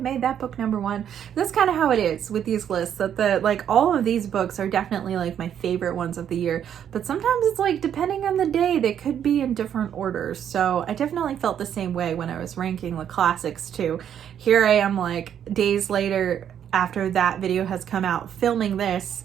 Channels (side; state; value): left; quieter; 9.3 dB